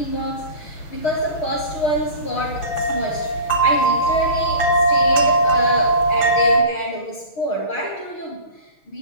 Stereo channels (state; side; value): late; right; 6.5 ms